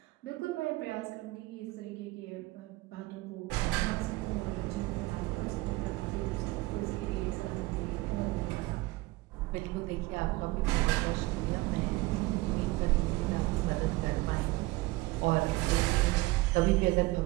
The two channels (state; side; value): quieter; left; 20.9 dB